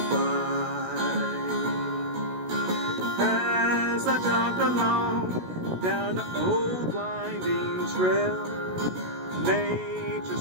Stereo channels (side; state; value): left; late; 16 ms